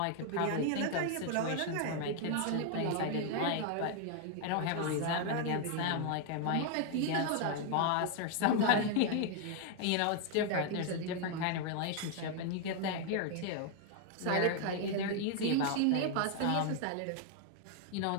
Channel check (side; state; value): both; different; correlation 0.00